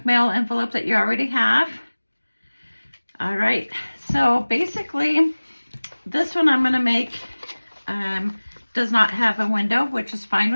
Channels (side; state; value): both; inverted; correlation -1.00